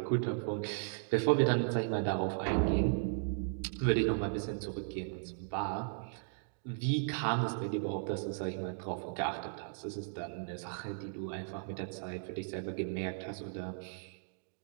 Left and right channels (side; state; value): left; silent; digital silence